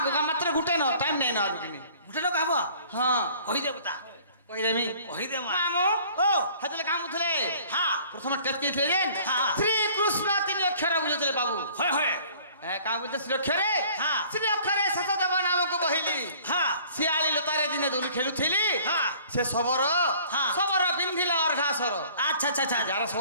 গো মাত্র গুটে ন টাইম নাই না আর কিনি গোটে লোক হব হ্যাঁ কহি দে কথা কই দেমি কহি দে মা মামু ও হাতলে কাম উঠলে হ্যাঁ প্রথমে টেস্ট কইছিলে যে হ্যাঁ। শ্রী কৃষ্ণ তিন অক্ষর বুঝুଥିଲେ বাবু হয় হয় কাম বলতে শ্রী অক্ষরে হ্যাঁ। শ্রী অক্ষরে শশদেব নামক বহিলি হ্যাঁ শিয়ালি লতারে দিনে দোলি খেলুଥିଲି হ্যাঁ। সে সবর হ্যাঁ। সবর পিন্ধিলা অর্ঘাসর আচ্ছা আচ্ছা আচ্ছা যারা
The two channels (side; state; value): both; inverted; correlation -0.52